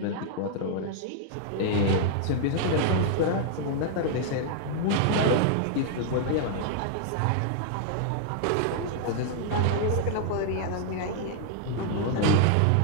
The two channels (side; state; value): both; different; correlation 0.00